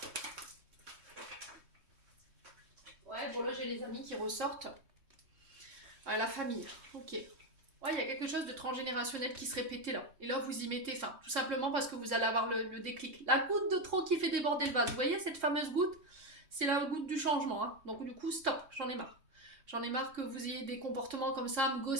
Ouais, bon là, j'ai les amis qui ressortent. La famille, ok. Ouais, il y a quelque chose de transgénérationnel qui se répétait là. Et là, vous y mettez fin. Tout simplement parce que vous allez avoir le déclic. La goutte de trop qui fait déborder le vase. Vous voyez cette fameuse goutte? C'est la goutte du changement. Hein. Donc du coup, stop, j'en ai marre. J'en ai marre que vous ayez des comportements comme ça, à me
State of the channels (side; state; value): left; late; 3.2 ms